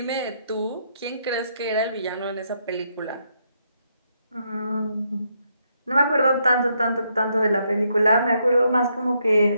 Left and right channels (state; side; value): inverted; both; correlation -0.76